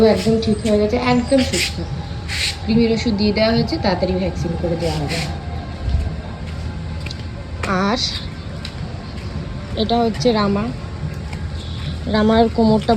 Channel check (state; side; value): identical; both; correlation 1.00